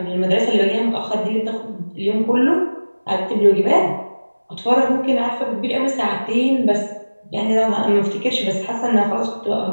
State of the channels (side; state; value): both; inverted; correlation -1.00